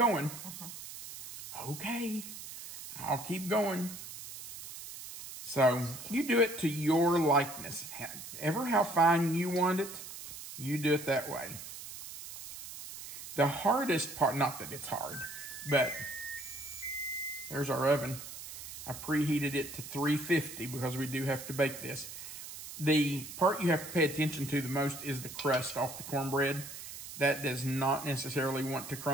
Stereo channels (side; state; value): right; noise; hiss, 11 dB below the sound